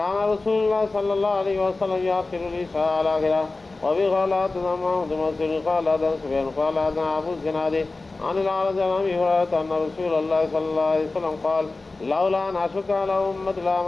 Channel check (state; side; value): quieter; right; 3.4 dB